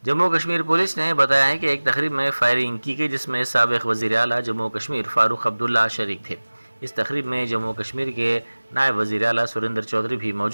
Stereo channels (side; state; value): both; inverted; correlation -1.00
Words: جموں کشمیر پولیس نے بتایا ہے کہ ایک تقریب میں فائرنگ کی گئی، جس میں سابق وزیر اعلیٰ جموں کشمیر فاروق عبداللہ شریک تھے۔ اس تقریب میں جموں کشمیر کے نائب وزیر اعلیٰ سریندر چودھری بھی